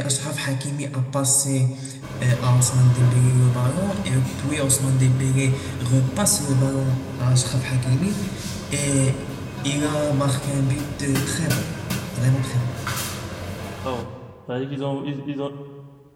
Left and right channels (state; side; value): identical; both; correlation 1.00